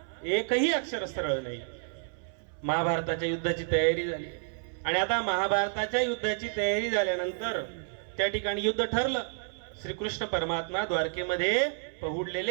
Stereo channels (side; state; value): left; silent; 58 dB below the other